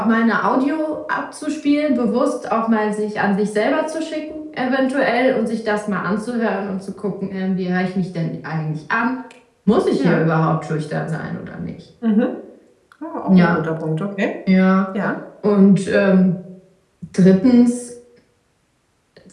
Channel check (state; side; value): identical; both; correlation 1.00